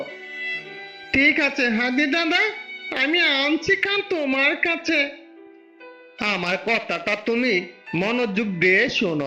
ঠিক আছে হাতি দাদা, আমি আনছি কান তোমার কাছে। আমার কথাটা তুমি মনোযোগ দিয়ে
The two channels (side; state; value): both; identical; correlation 1.00